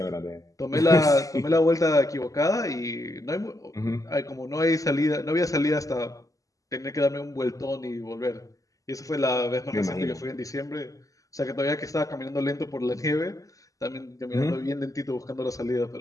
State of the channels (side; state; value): right; late; 0.16 ms